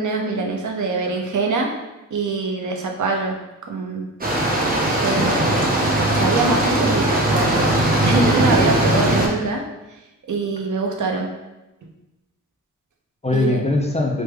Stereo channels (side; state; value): both; normal; correlation 0.31